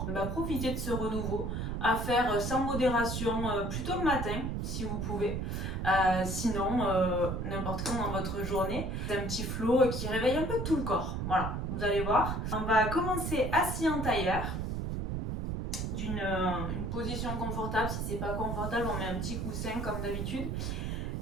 profiter de ce renouveau, à faire sans modération, plutôt le matin si vous pouvez, sinon n'importe quand dans votre journée. C'est un petit flow qui réveille un peu tout le corps, voilà, vous allez voir. On va commencer assis en tailleur, une position confortable. Si c'est pas confortable, on met un petit coussin comme d'habitude.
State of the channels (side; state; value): right; noise; rumble, 2 dB below the sound